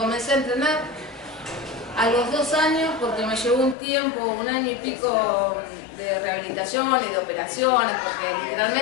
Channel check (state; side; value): drops out; right; at 3.8 s